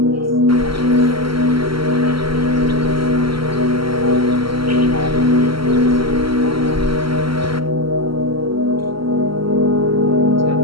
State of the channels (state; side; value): late; left; 0.74 ms